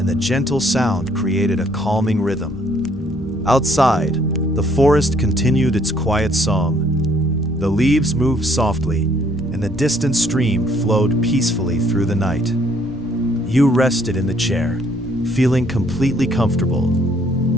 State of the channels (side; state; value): both; normal; correlation 0.65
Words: the gentle sound created a calming rhythm. Outside, the forest continued its quiet song. The leaves moved softly, and the distant stream flowed peacefully through the night. You rested in the chair, feeling completely comfortable.